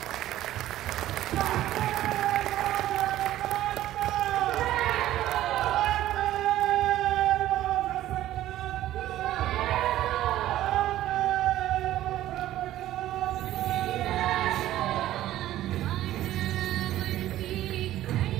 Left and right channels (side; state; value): left; quieter; 13.9 dB